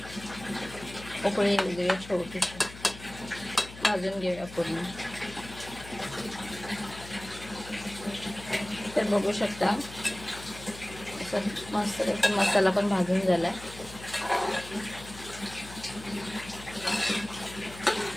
उकळी येऊ देऊया, छोटीशी भाजून घेऊया पूर्ण। तर बघू शकता असं मस्त मसाला पण भाजून झालाय।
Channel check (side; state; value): left; noise; hum, 15 dB below the sound